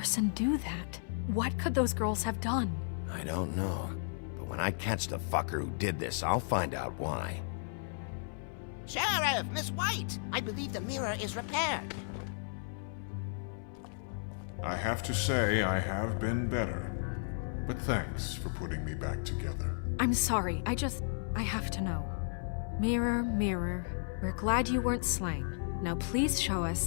do that? What could those girls have done? I don't know. But when I catch the fucker who did this, I'll find out why. Sheriff, Miss White! I believe the mirror is repaired. I have to say I have been better. But thanks for putting me back together. I'm sorry, I have to know. Mirror, mirror, we're glad you weren't slain. Now please show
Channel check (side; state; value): right; silent; 55 dB below the other